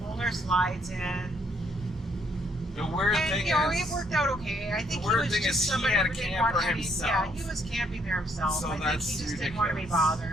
Pulled our slides in. The weird thing it worked out okay. I think he was just somebody who didn't want to be. Yeah, he was camping there himself. So I think he just ridiculous. didn't want to be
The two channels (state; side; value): normal; both; correlation 0.70